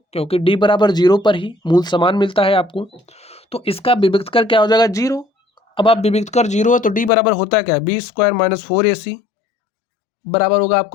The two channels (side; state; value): right; drops out; at 7.1 s